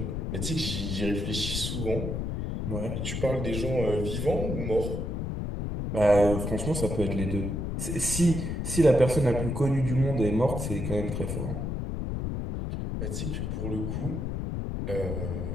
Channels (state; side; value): noise; left; rumble, 3 dB below the sound